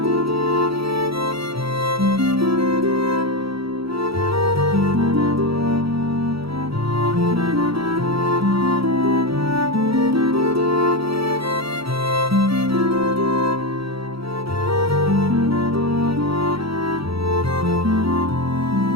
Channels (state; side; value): late; left; 0.76 ms